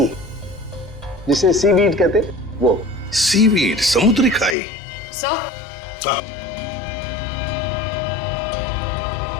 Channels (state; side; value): drops out; right; at 4.5 s